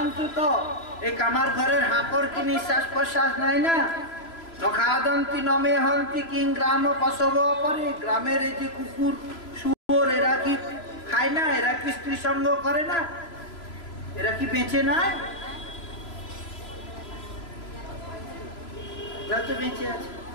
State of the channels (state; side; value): late; right; 3.0 ms